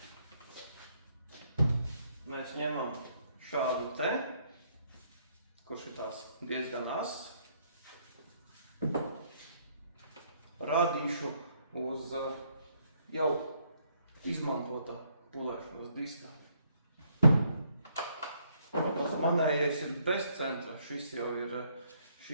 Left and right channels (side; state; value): both; inverted; correlation -0.69